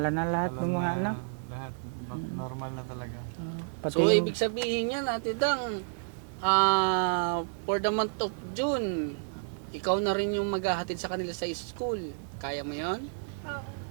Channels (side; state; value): left; silent; 57 dB below the other